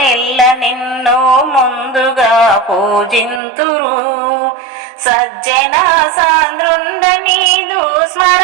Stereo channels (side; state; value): left; drops out; at 3.4 s